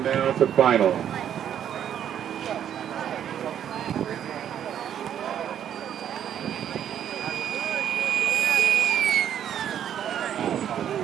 now to final.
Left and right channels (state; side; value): quieter; left; 9.8 dB